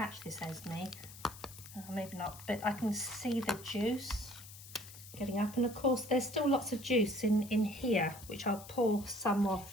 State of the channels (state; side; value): noise; left; hiss, 16 dB below the sound